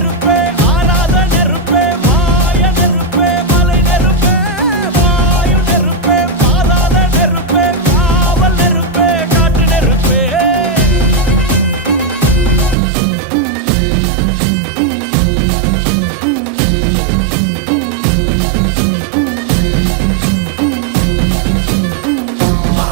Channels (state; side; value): drops out; left; at 12.8 s